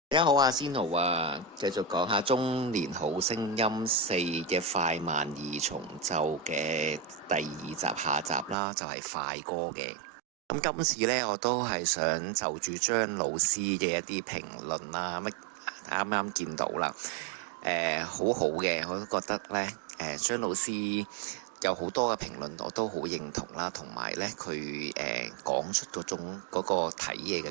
大家好啊，仙奴啊，繼續講下《中年好聲音4》嘅快慢二重奏嘅第二集下集啦，就係快歌嘅。咁今次呢，我都係想就住張老師嘅一啲評論啦，啱啱見到啦，好好嘅，我都覺得呢，張老師有好多嘅評論我都好認同啦，同埋呢，佢講出嗰個睇嘢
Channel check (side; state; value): left; drops out; at 8.6 s